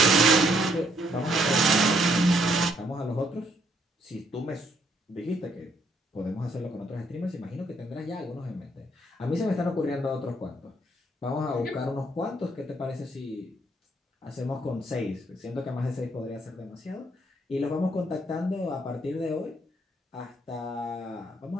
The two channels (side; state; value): both; normal; correlation 0.70